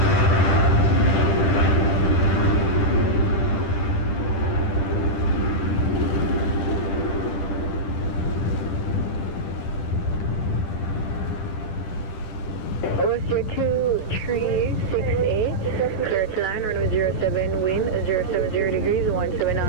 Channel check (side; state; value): right; late; 10 ms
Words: WestJet 2368, clear to line, runway 07, wind 070 degrees, 17